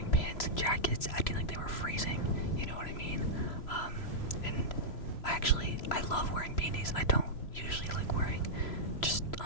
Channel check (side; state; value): right; late; 3.0 ms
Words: pants and jackets acting like they were freezing, you know what I mean? And I love wearing beanies. I don't usually like wearing just